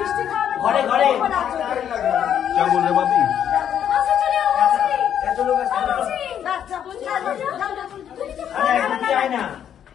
ঘরে ঘরে क्या बोल रहे बाबी? আরে একজন চায় না,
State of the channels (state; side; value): quieter; right; 9.4 dB